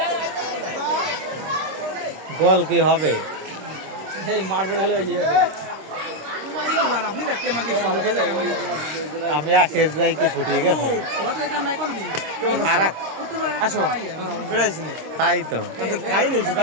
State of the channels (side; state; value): left; late; 26 ms